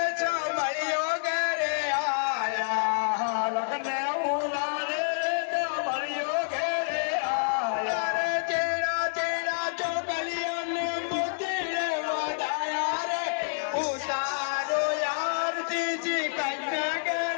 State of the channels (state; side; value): silent; right; 59 dB below the other